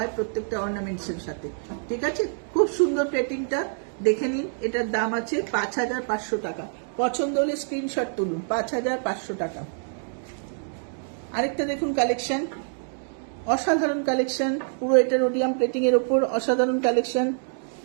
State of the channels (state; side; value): silent; left; digital silence